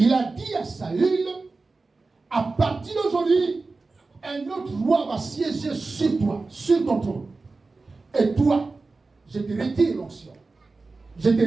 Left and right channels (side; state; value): left; quieter; 3.7 dB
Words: a dit à Saül, à partir d'aujourd'hui, un autre roi va siéger sur toi, sur ton trône. Et toi, je te retire l'onction. Je te